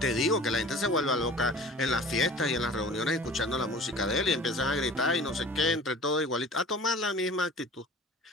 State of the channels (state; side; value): normal; both; correlation 0.43